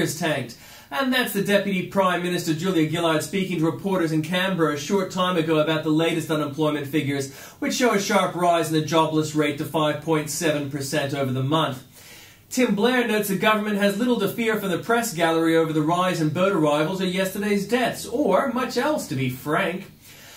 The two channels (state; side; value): identical; both; correlation 1.00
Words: tanked. And that's the Deputy Prime Minister Julia Gillard speaking to reporters in Canberra a short time ago about the latest unemployment figures, which show a sharp rise in the jobless rate to 5.7% over the month. Tim Blair notes the government has little to fear from the press gallery over the rise in boat arrivals or yesterday's deaths, or much else, to be frank.